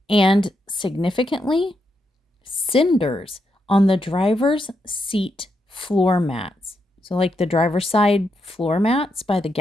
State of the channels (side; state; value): both; normal; correlation 0.82